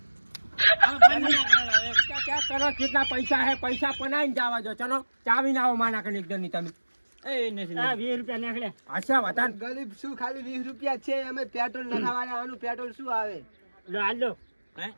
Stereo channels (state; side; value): inverted; both; correlation -1.00